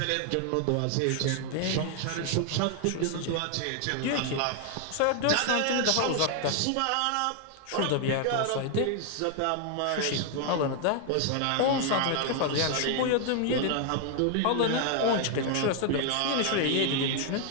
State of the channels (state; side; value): different; both; correlation 0.00